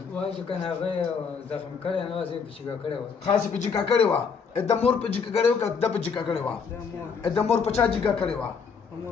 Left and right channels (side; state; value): right; quieter; 5.9 dB